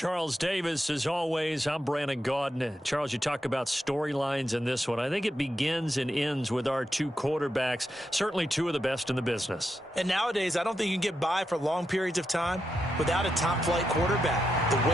Davis, as always, I'm Brandon Gaudin. Charles, you talk about storylines in this one. I think it begins and ends with our two quarterbacks, certainly two of the best in the business. And nowadays, I don't think you can get by for long periods of time without a top-flight quarterback. The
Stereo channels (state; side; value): normal; both; correlation 0.85